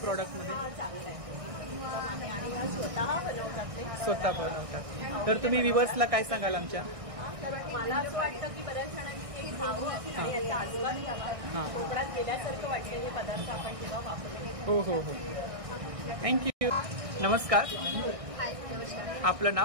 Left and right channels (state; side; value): late; left; 1.6 ms